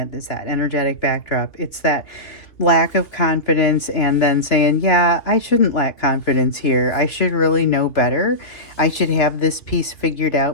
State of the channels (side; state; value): right; late; 3.0 ms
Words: is that energetic backdrop. It's that lack of confidence, and then saying, yeah, I shouldn't lack confidence here. I should really know better. I should have this piece figured